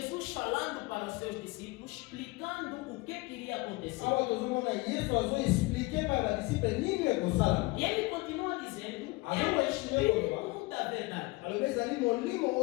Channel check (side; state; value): right; quieter; 23.8 dB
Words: falando para os seus discípulos, explicando o que queria acontecer. awa tozomona yesu azoexplike pa badisiple nini ekosala. E ele continua dizendo, é o Espírito da verdade. alobi ezali molimo